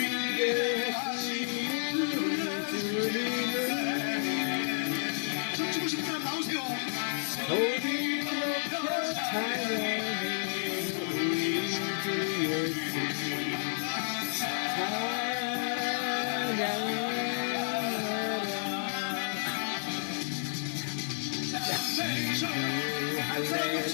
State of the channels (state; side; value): silent; right; digital silence